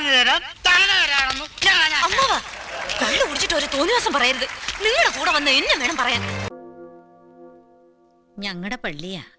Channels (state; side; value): identical; both; correlation 1.00